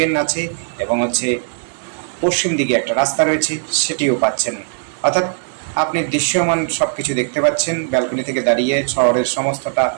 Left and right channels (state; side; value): silent; left; digital silence